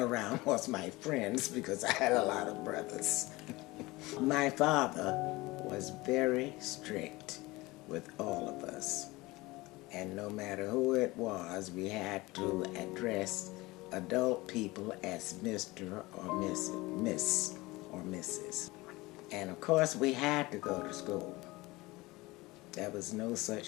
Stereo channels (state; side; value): quieter; right; 21.2 dB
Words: was my friends, because I had a lot of brothers. My father was very strict with all of us, and no matter who it was, we had to address adult people as Mr. or Miss or Mrs. And of course we had to go to school. There was no